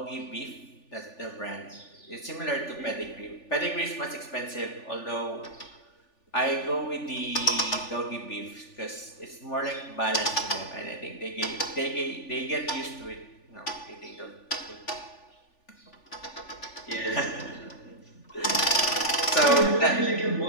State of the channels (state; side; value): late; right; 3.4 ms